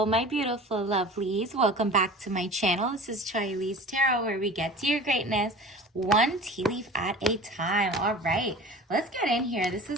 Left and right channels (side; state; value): both; normal; correlation 0.39